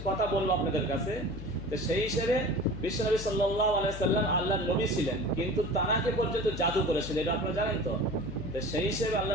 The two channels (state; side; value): noise; left; hum, 9 dB below the sound